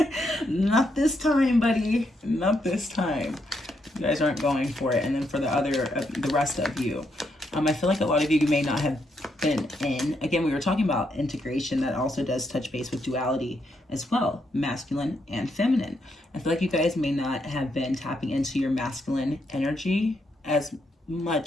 Not this time, buddy. Not this time. You guys aren't going for it. And then for the rest of you, I feel like a lot of you may not have been in. Again, we were talking about integration. That also does touch base with duality as well, masculine and feminine. I feel like you guys may not have been tapping into your masculine energy as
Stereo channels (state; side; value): normal; both; correlation 0.78